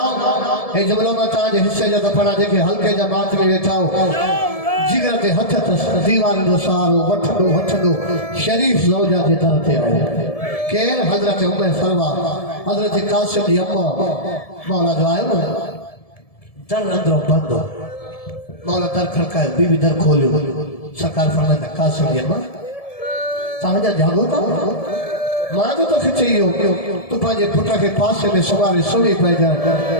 ए जबलो में ताज हिस्से जो दफना देखे हल्के जमात में बैठाओ जिगर के हथ दीवार जो सारो वठदो शरीफ ज़ौजा जे तरफ ते आए केर हजरत उम्मे फरवा हजरत कासिम जी अम्मा मौला जो आयो दर अंदरों बंद मौला दर खड़कायो बीबी दर खोलियो सरकार फरमाया कासिम जी अम्मा ताजा जागो था मां जो तो खिचियो तू पाजे पुत्र के पासे में सवारी सुनी पई जा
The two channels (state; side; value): late; right; 1.7 ms